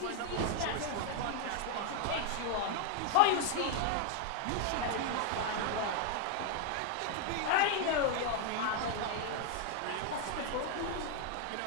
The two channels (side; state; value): both; different; correlation 0.00